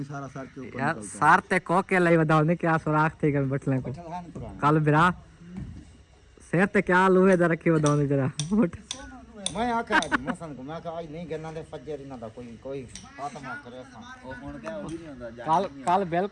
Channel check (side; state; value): both; identical; correlation 1.00